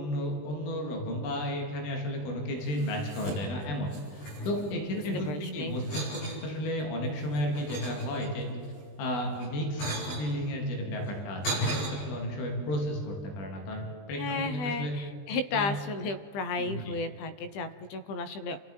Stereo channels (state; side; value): late; right; 20 ms